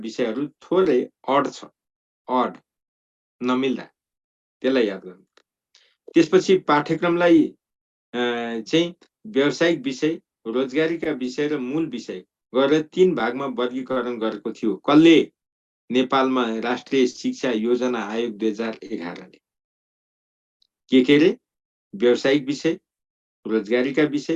थोरै अड छ, अड नमिल्दा त्यसलाई याद गर्नु। त्यसपछि पाठ्यक्रमलाई चाहिँ व्यावसायिक विषय, रोजगारीका विषय र मूल विषय गरेर 3 भागमा वर्गीकरण गरेको थियो। कसले? नेपालमा राष्ट्रिय शिक्षा योजना आयोग 2011 ले। के रे? व्यावसायिक विषय, रोजगारीका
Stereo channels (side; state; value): both; identical; correlation 1.00